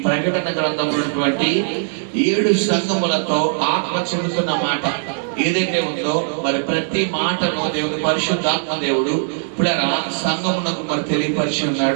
ప్రకటన గ్రంథంలో ఉన్నటువంటి 7 సంఘములతో ఆత్మ చెబుతున్న మాట ఏదైతే ఉందో, మరి ప్రతి మాటను దేవుని పరిశుద్ధాత్మ దేవుడు పిల్లరా సంఘమునకు మరి తెలియపరిచి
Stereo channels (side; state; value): left; silent; digital silence